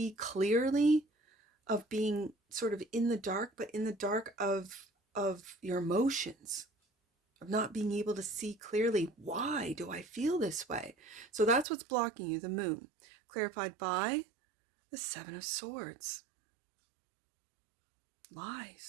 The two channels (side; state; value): left; drops out; at 11.7 s